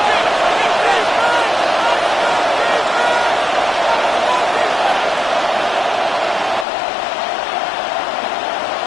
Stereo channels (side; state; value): right; drops out; at 6.7 s